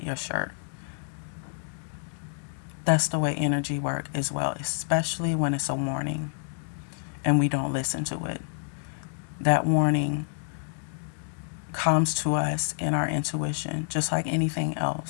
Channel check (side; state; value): right; silent; digital silence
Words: your shirt. That's the way energy works as well, especially when it's a warning and we don't listen to it. That warning comes to us in our intuition, just like anything